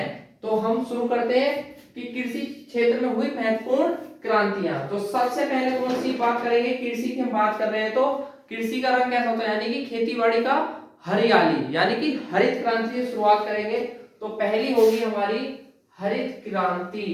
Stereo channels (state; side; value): identical; both; correlation 1.00